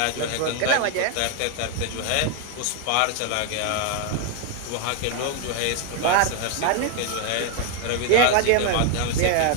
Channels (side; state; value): both; different; correlation 0.01